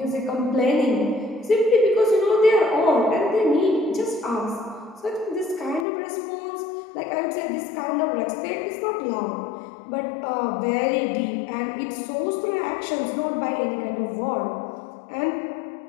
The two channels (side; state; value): right; drops out; at 5.9 s